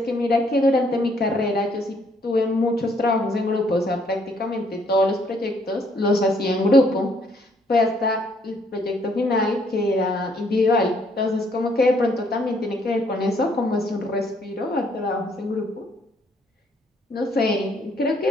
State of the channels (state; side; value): normal; both; correlation 0.67